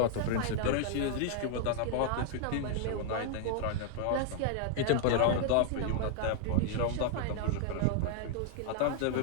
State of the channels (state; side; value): different; both; correlation -0.01